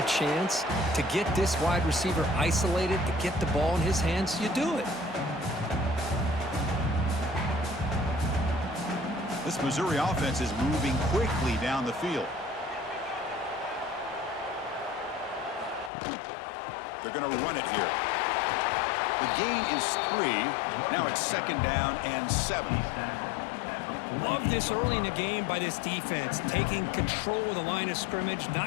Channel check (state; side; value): drops out; right; at 15.9 s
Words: a chance to get this wide receiver isolated, to get the ball in his hands, you do it. This Missouri offense is moving quickly down the field. They're going to run it here. The gain is 3. Now it's 2nd down and 7. Love this early in the game by this defense, taking control of the line of scrimmage,